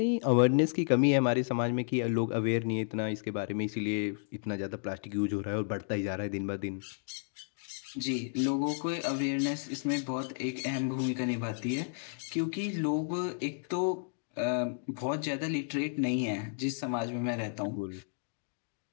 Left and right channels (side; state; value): right; silent; digital silence